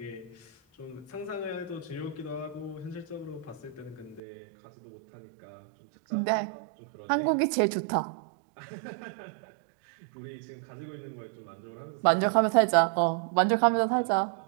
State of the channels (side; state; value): left; drops out; at 4.2 s